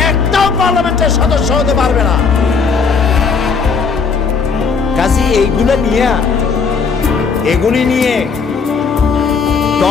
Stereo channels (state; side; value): quieter; right; 5.3 dB